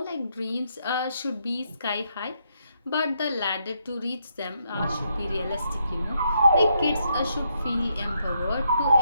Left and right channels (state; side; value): inverted; both; correlation -0.77